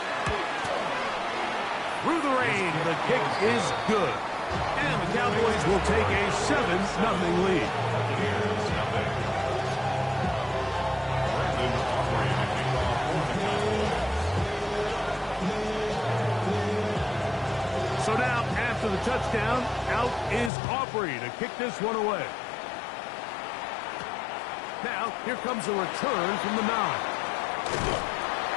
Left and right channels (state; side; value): drops out; right; at 20.5 s